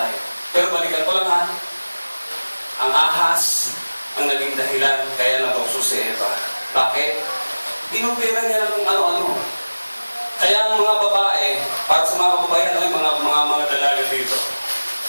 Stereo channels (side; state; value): both; inverted; correlation -1.00